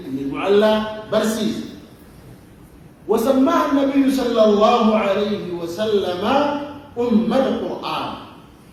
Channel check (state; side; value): identical; both; correlation 1.00